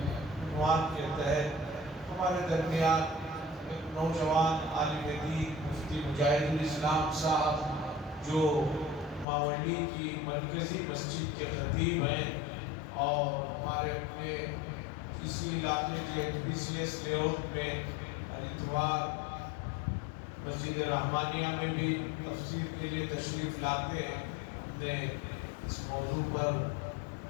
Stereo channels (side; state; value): right; drops out; at 9.2 s